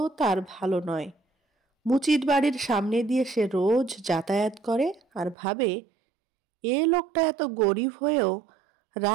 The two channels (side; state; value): left; drops out; at 5.4 s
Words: তার ভালো নয়। মুচির বাড়ির সামনে দিয়ে সে রোজ যাতায়াত করে আর ভাবে, এ লোকটা এত গরিব হয়েও